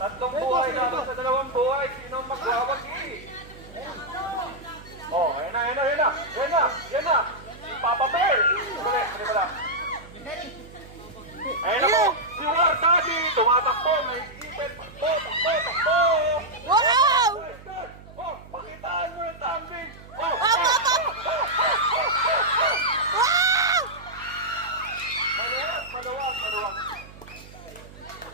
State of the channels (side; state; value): right; noise; hum, 19 dB below the sound